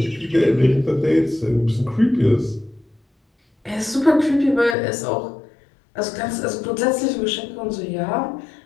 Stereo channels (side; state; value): right; drops out; at 4.8 s